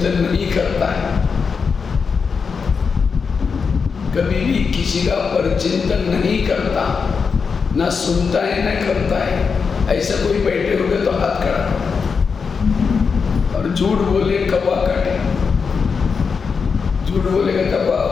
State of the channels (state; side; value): quieter; right; 5.5 dB